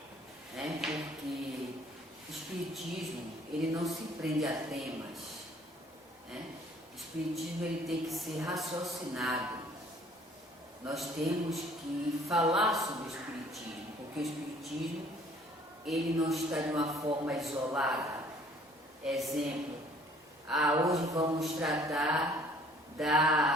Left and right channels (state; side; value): normal; both; correlation 0.57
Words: né? Porque o espiritismo, ele não se prende a temas, né? O espiritismo, ele tem que ser raciocinado. Nós temos que falar sobre o espiritismo, porque o espiritismo, ele não está de uma forma isolada. Exemplo, hoje vamos tratar